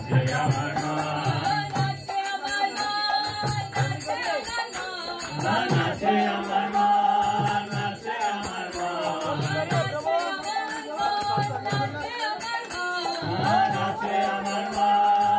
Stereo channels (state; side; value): identical; both; correlation 1.00